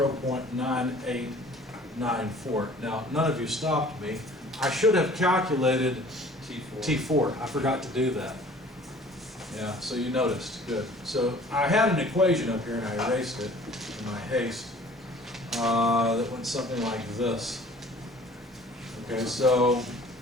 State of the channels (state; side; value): normal; both; correlation 0.50